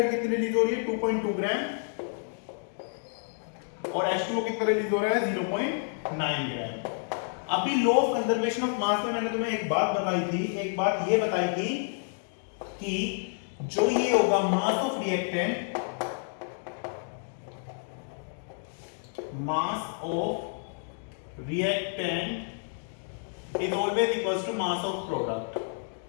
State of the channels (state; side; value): silent; right; 56 dB below the other